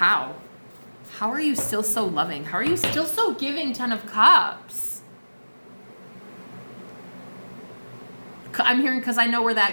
How are you still so loving? How are you still so giving, 10 of Cups? I'm hearing because I know where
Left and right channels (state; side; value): inverted; both; correlation -1.00